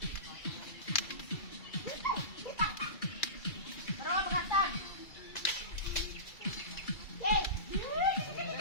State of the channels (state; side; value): late; right; 2.3 ms